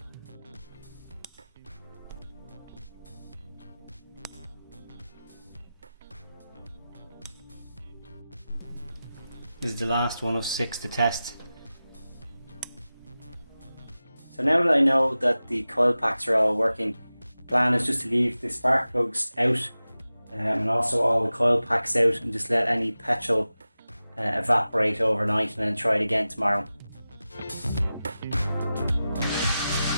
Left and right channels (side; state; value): both; inverted; correlation -0.95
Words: This is the last one of 6 to test. So now that I know that the coil packs are all working, the plan is just to leave the spark plugs out and also all the coil packs out, and just let any petrol evaporate overnight, and then try it again tomorrow.